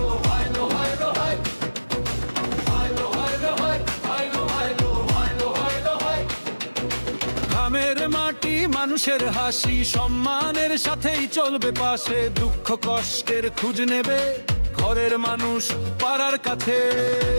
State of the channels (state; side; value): inverted; both; correlation -1.00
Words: গ্রামের মাটি মানুষের হাসি, সম্মানের সাথেই চলবে পাশে, দুঃখ কষ্টের খোঁজ নেবে ঘরের মানুষ পাড়ার কাছে।